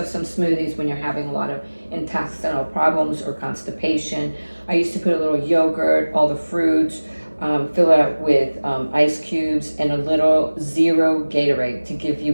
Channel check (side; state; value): both; inverted; correlation -1.00